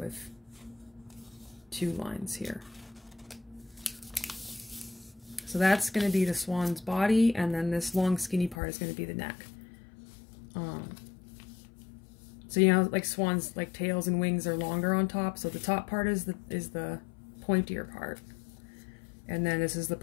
2 lines here. So that's going to be the swan's body, and then this long skinny part is going to be the neck. So you know, like swans, like tails and wings are longer on top. So the top part is the pointier part, and then this is the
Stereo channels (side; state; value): right; drops out; at 8.6 s